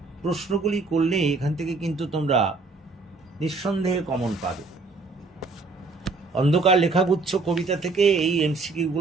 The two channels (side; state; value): left; quieter; 3.7 dB